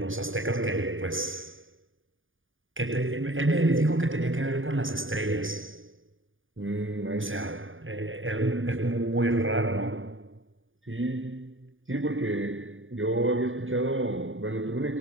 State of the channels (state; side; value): late; left; 0.58 ms